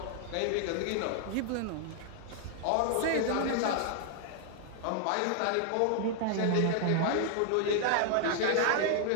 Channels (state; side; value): different; both; correlation 0.00